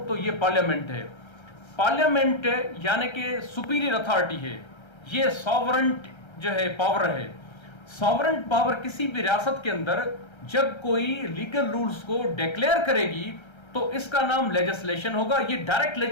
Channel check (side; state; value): right; late; 1.3 ms